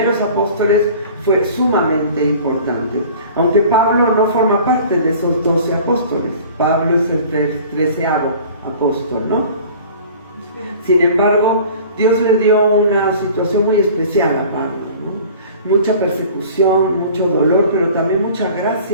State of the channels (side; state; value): both; inverted; correlation -0.45